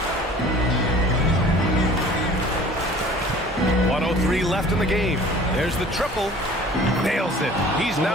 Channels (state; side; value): normal; both; correlation 0.48